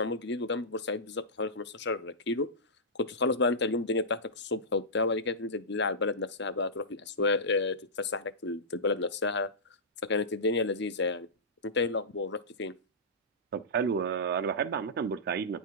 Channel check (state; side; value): normal; both; correlation -0.16